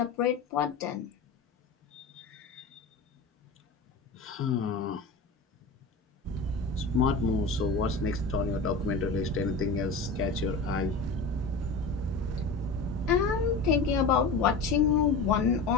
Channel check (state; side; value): quieter; right; 3.8 dB